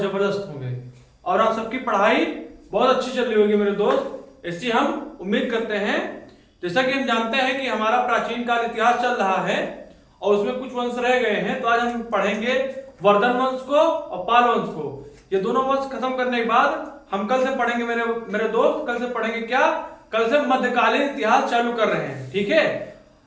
होंगे और आप सबकी पढ़ाई बहुत अच्छी चल रही होगी मेरे दोस्त। ऐसी हम उम्मीद करते हैं। जैसा कि हम जानते हैं कि हमारा प्राचीन काल इतिहास चल रहा है और उसमें कुछ वंश रह गए हैं, तो आज हम पढ़ेंगे वर्धन वंश को और पाल वंश को। ये दोनों वंश खत्म करने के बाद हम कल से पढ़ेंगे मेरे दोस्त, कल से पढ़ेंगे क्या, कल से मध्यकालीन इतिहास चालू कर रहे हैं, ठीक है।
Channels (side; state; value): both; identical; correlation 1.00